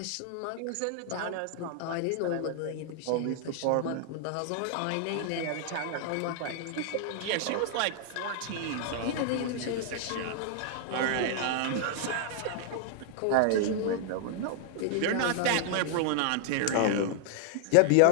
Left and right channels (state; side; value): different; both; correlation 0.00